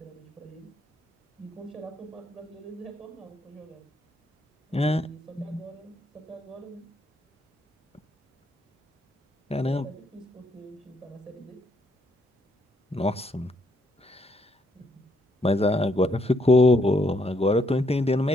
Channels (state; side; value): normal; both; correlation 0.73